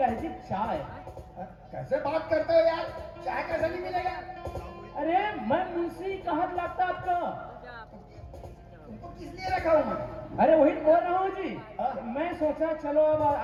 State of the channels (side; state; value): both; identical; correlation 1.00